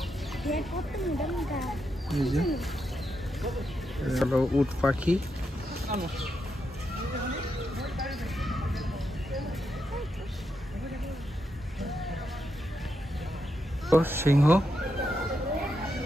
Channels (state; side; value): normal; both; correlation 0.83